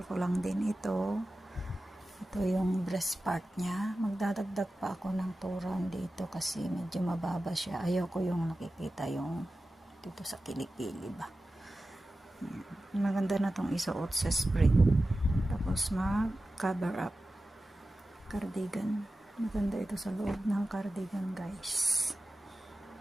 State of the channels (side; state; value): both; normal; correlation 0.94